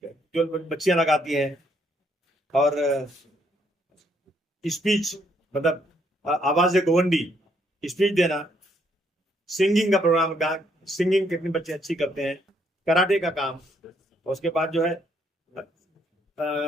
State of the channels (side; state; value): both; normal; correlation 0.71